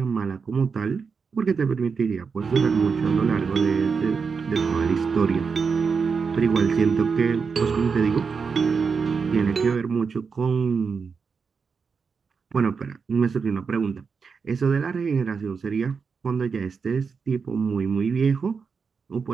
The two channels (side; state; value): left; quieter; 5.5 dB